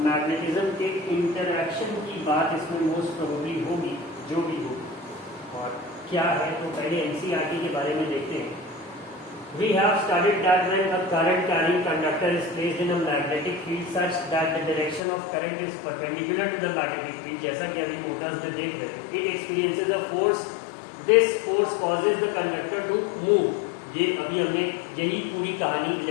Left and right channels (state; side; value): drops out; right; at 15.0 s